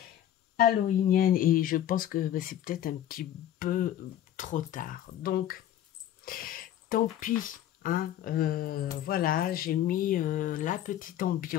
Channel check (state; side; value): quieter; right; 11.5 dB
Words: halloweenienne. Et je pense que c'est peut-être un petit peu trop tard. Donc, tant pis. Hein, voilà, j'ai mis la petite